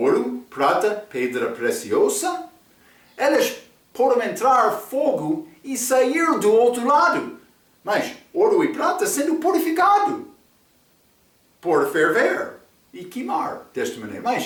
prata, pedra preciosa, elas podem entrar fogo e sair do outro lado. Mas ouro e prata sendo purificado, por ferver e queimar desta maneira.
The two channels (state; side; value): identical; both; correlation 1.00